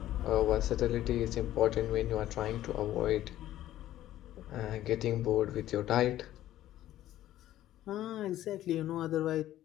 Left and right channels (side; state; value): right; quieter; 13.5 dB